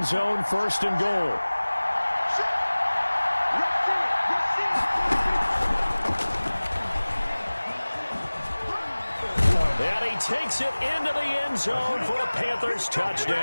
zone, first and goal. And he takes it into the end zone for a Panthers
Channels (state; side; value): inverted; both; correlation -1.00